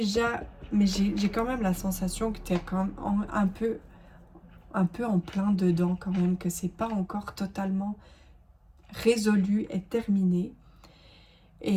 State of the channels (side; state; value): both; identical; correlation 1.00